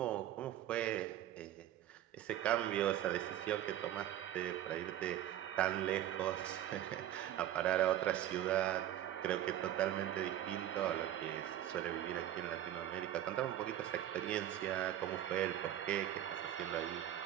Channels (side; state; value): left; quieter; 12.1 dB